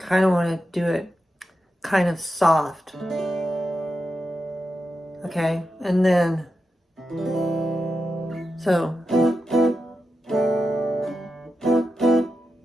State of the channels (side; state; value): both; normal; correlation 0.89